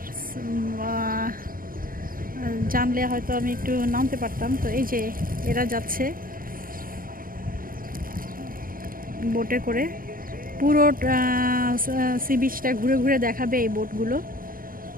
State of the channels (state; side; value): late; left; 0.41 ms